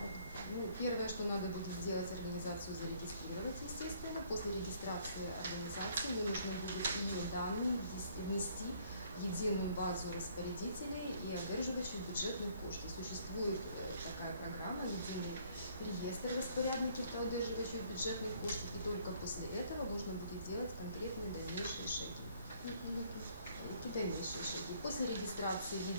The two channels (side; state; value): both; inverted; correlation -0.62